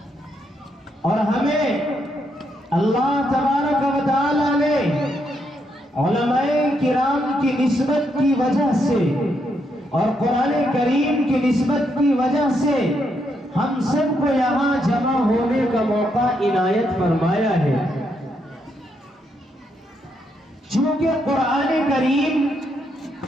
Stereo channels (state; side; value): normal; both; correlation 0.78